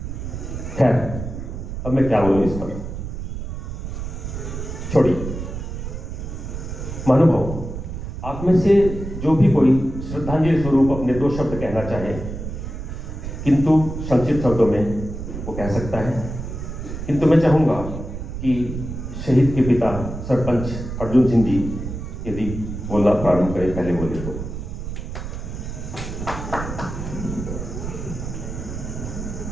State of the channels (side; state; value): right; noise; rumble, 7 dB below the sound